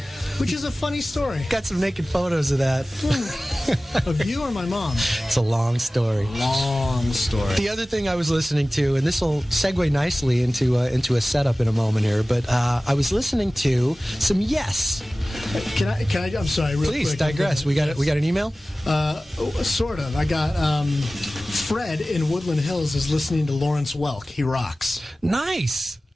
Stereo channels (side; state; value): both; normal; correlation 0.97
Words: Which is a funny story. Got some naked photos of that. Of you or my mom? It's a long story. Long story. The other thing I was listening to, and this will segue nicely into a setup in a moment here, but I was listening to some Yes. Can I? I'm sorry. Real Please quick, digress. We got an email. Sort of. I got Fred in Woodland Hills is listening to Lawrence Welk. He rocks. Nice.